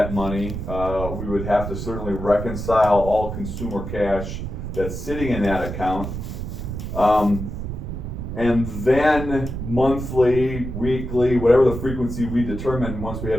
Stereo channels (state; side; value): noise; right; rumble, 6 dB below the sound